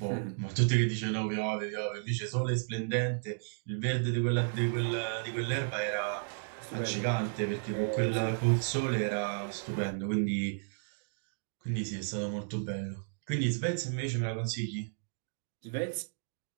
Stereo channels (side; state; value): left; silent; digital silence